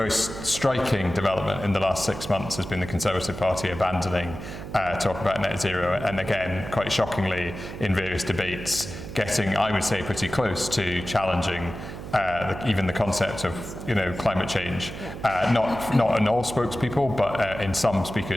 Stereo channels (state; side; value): noise; right; hum, 10 dB below the sound